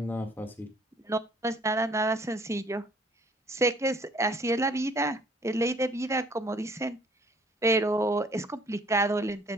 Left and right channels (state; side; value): normal; both; correlation 0.58